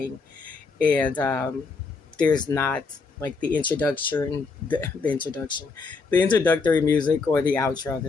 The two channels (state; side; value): quieter; right; 4.4 dB